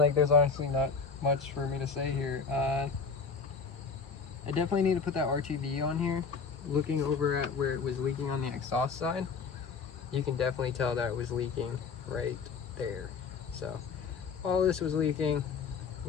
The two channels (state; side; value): quieter; right; 5.2 dB